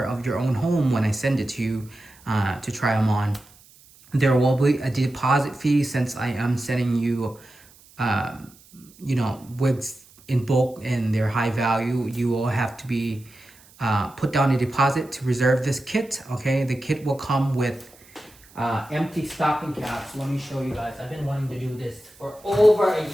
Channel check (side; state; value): right; noise; hiss, 26 dB below the sound